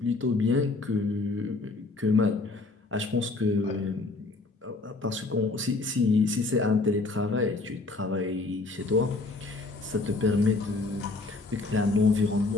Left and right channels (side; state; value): right; quieter; 3.4 dB